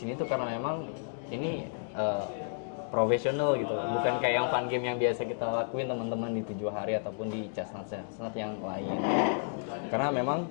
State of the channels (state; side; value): silent; right; digital silence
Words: tuh karena memang ini profesional gitu, bukan kayak yang fun game yang biasa kita lakuin teman-teman di 7 hari ataupun di chestnut yang lain. Karena memang